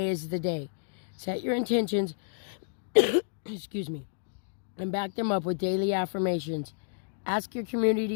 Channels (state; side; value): silent; right; digital silence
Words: is the day. Set your intentions, excuse me, and back them up with daily affirmations. Ask your